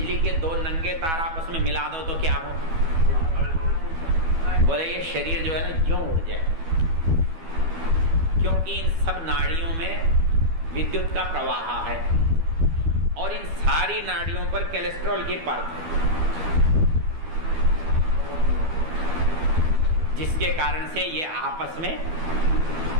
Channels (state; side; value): late; left; 12 ms